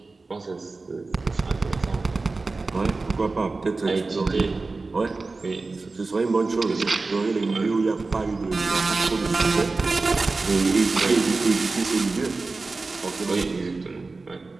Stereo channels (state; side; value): quieter; left; 3.7 dB